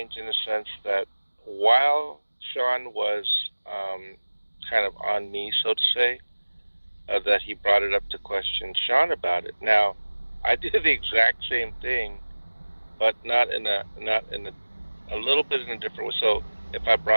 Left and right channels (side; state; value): both; inverted; correlation -1.00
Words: in the sense that while Sean was kind of on me, so to say, that he brought it up to question Sean about it. Now, I did the exact same thing, but not in a little bit in a different way. So if I